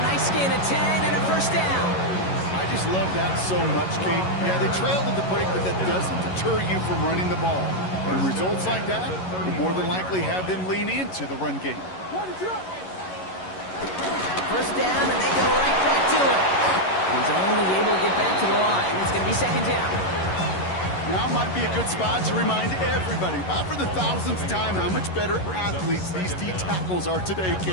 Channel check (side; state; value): right; late; 11 ms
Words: nice gain of 10 and a first down. I just love that so much, Kate. Yeah, they trailed at the break, but that doesn't deter you from running the ball. And results like that will more than likely have them lean into the run game. First down, and they go right back to it. He's only able to get back to the line. It's going to be 2nd down. Now might be a good spot to remind everybody, for the 1000th time, how much better athletes these D tackles are today,